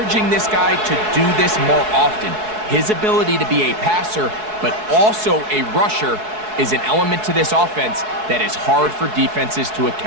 this guy to do this more often. His ability to be a passer, but also a rusher, is an element to this offense that is hard for defenses to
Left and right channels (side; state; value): left; late; 4.7 ms